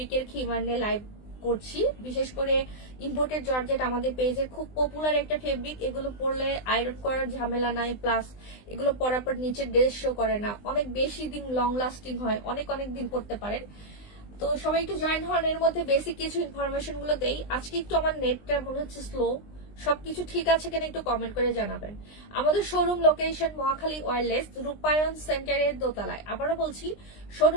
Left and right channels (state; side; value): late; right; 20 ms